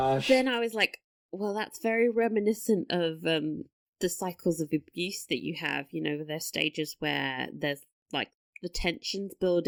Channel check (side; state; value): both; identical; correlation 1.00